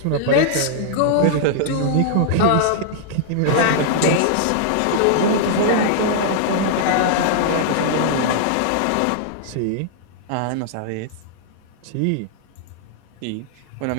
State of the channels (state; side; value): different; both; correlation -0.01